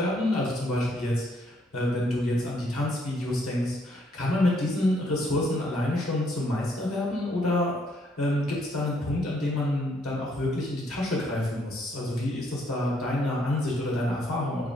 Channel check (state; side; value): normal; both; correlation 0.70